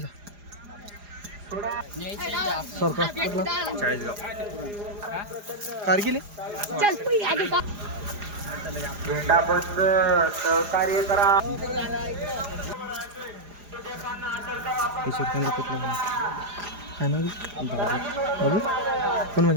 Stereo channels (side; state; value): left; late; 4.9 ms